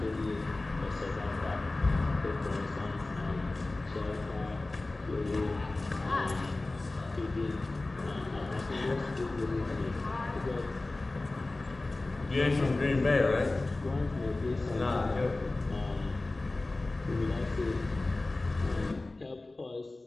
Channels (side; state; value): right; quieter; 3.0 dB